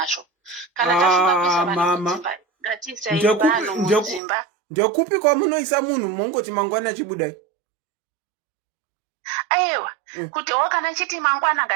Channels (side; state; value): left; drops out; at 4.2 s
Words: Kana tafunga kuisa vanhu mudzimba, ngatiisei vanhu mudzimba. Ndekupi kwamunoisa munhu mongoti mangwana achibudai? Aiwa, kuti kana chiti mangwana